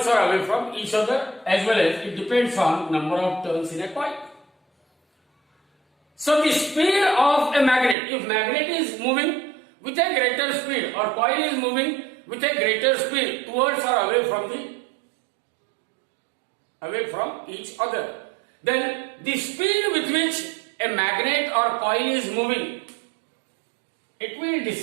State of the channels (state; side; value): drops out; left; at 8.0 s